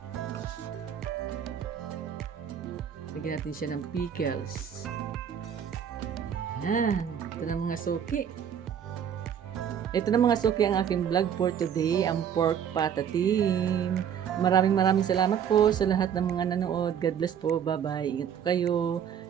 Lagyan natin siya ng pickles. Ayan. Ito na mga suki. Ito na mga suki ang aking vlog for today. Ang pork patatim. Maraming salamat po sa lahat ng mga nanood. God bless po. Bye-bye. Ingat po kayo.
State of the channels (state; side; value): quieter; left; 8.5 dB